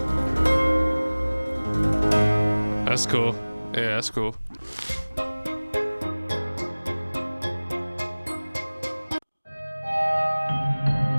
That's cool. Yeah, that's cool.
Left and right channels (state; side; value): inverted; both; correlation -1.00